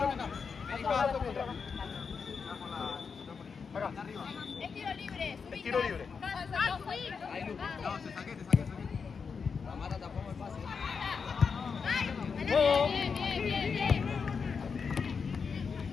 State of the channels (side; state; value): right; quieter; 5.7 dB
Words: Acá. Es tiro libre. Es tiro libre. Ahí, Lu. No, te saqué. Tamara tapamos el pase. Bien.